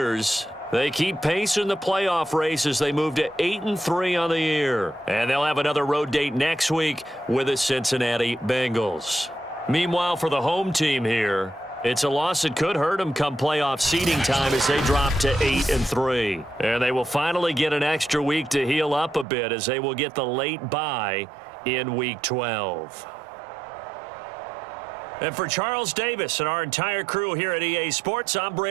they keep pace in the playoff race as they move to 8-3 on the year. And they'll have another road date next week with the Cincinnati Bengals. Meanwhile, for the home team here, it's a loss that could hurt them come playoff seeding time as they drop to 8-3. And they will finally get an extra week to heal up a bit as they will get the late bye in Week 12. And for Charles Davis and our entire crew here at EA Sports, I'm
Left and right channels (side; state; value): left; drops out; at 19.2 s